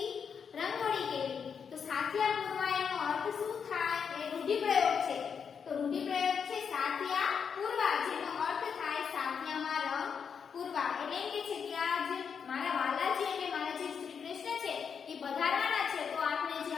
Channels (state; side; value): quieter; right; 6.7 dB